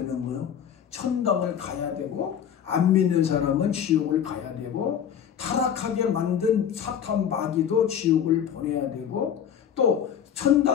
거예요? 천당을 가야 되고 안 믿는 사람은 지옥을 가야 되고 타락하게 만든 사탄 마귀도 지옥을 보내야 되고 또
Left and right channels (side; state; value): right; quieter; 8.7 dB